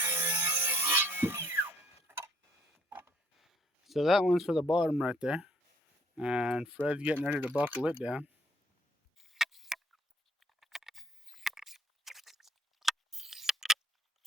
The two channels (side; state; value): both; normal; correlation 0.63